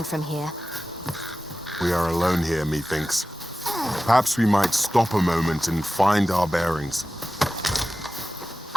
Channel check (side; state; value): both; normal; correlation 0.95